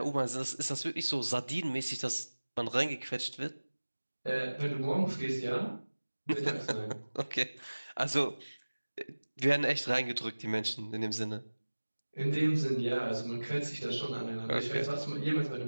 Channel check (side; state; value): both; inverted; correlation -1.00